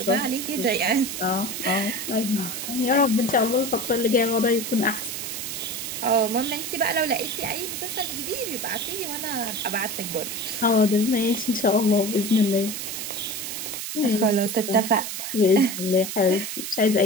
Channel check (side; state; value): right; noise; hiss, 6 dB below the sound